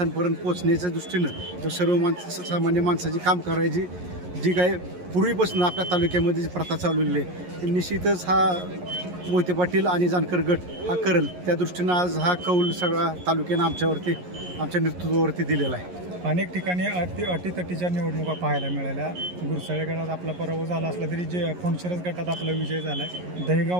पोचण्याच्या दृष्टीनं किंवा सर्वसामान्य माणसाची काम करायची जी काय पूर्वीपासून आपल्या तालुक्यामध्ये जी प्रथा चालवलेली आहे ती निश्चितच हा मोहिते पाटील आणि जानकर गट हा करेल त्या दृष्टीनं आज हा कौल सगळा तालुक्यानं आमच्या नेतृत्वावरती दिलेला आहे. अनेक ठिकाणी अटीतटीच्या निवडणुका पाहायला मिळाल्या. गुरसाळे गटात आपला पराभव झाला असला तरी जे फणशिरस गटात आपला विजय झाला आहे.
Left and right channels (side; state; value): left; late; 11 ms